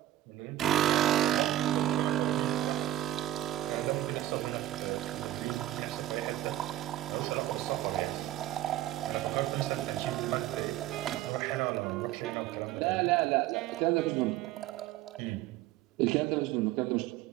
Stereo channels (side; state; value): left; quieter; 14.1 dB